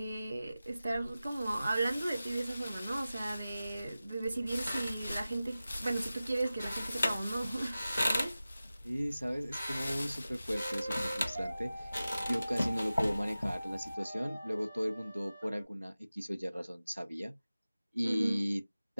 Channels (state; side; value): inverted; both; correlation -0.96